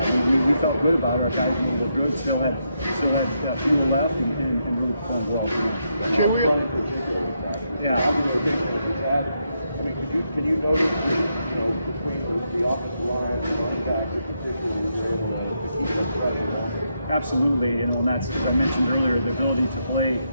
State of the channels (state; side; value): inverted; both; correlation -0.80